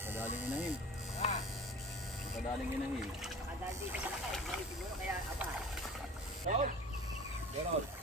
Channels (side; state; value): both; normal; correlation 0.40